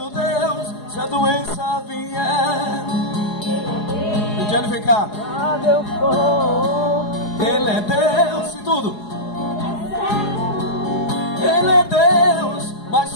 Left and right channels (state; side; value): late; right; 4.8 ms